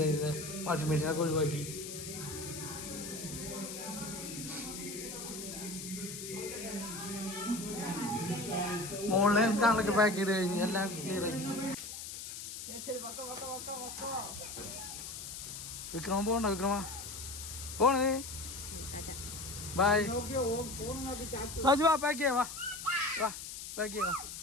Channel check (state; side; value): noise; left; hiss, 8 dB below the sound